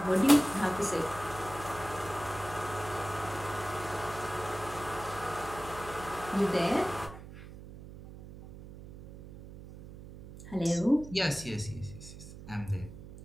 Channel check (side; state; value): right; noise; hum, 14 dB below the sound